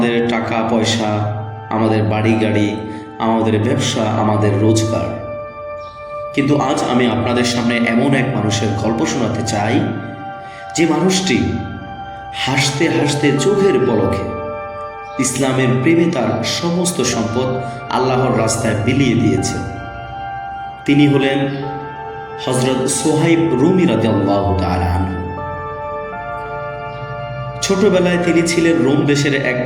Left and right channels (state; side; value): identical; both; correlation 1.00